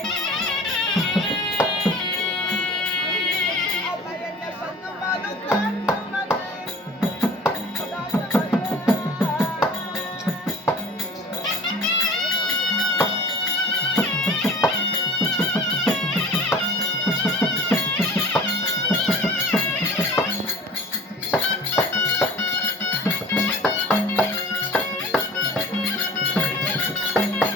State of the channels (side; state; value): both; normal; correlation 0.43